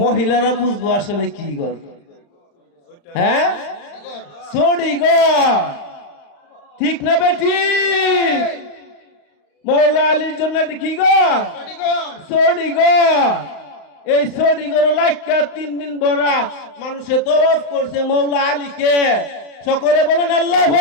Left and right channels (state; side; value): late; right; 35 ms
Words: মহিলারা বুঝবো আসলে কি ঘর। হ্যাঁ, সড়ি ঘর। ঠিক না বেটি? মাওলা আলীর জন্য এটা কি ঘর? সড়ি ঘর। এই সড়ি ঘরে লাইকা 3 দিন ভরা মানুষে তওয়াফ করছে মাওলা আলীকে। সকলে বলেন আল্লাহু